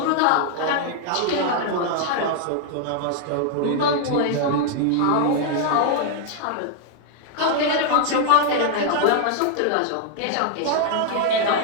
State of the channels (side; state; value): both; different; correlation 0.00